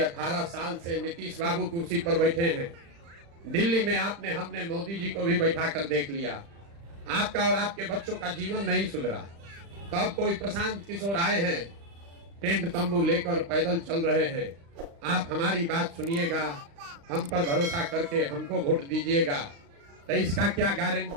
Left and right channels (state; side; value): late; left; 35 ms